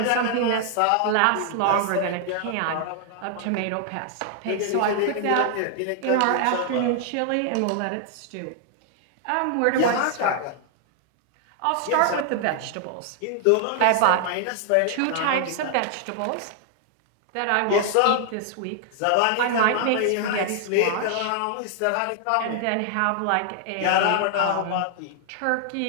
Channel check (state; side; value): different; both; correlation 0.00